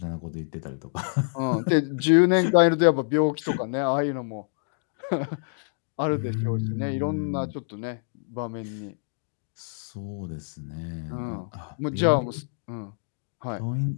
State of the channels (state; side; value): silent; right; digital silence